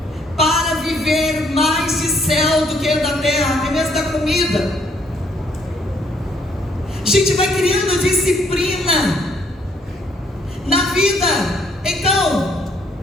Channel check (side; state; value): both; normal; correlation 0.68